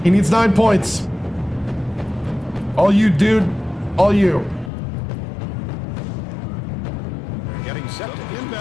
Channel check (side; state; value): right; drops out; at 4.7 s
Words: He needs 9 points. All you, dude. All you. Getting set to